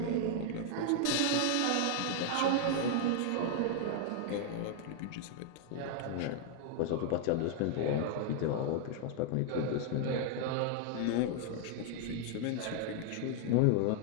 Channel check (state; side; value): different; both; correlation 0.00